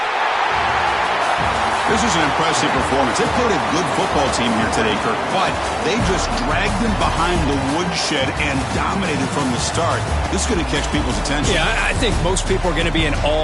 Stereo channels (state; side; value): identical; both; correlation 1.00